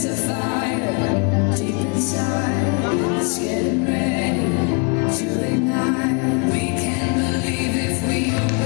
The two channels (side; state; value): right; quieter; 34.5 dB